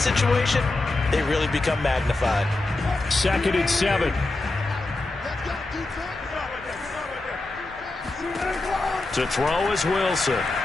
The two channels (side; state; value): right; quieter; 3.0 dB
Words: situation, they really become magnified. 2nd and 7. To throw is Wilson.